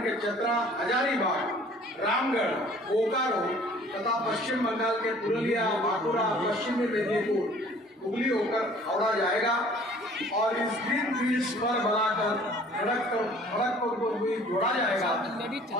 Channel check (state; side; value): normal; both; correlation 0.53